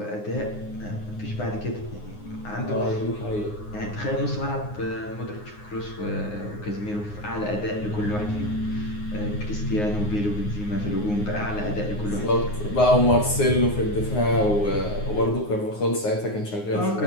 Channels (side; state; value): right; late; 9.6 ms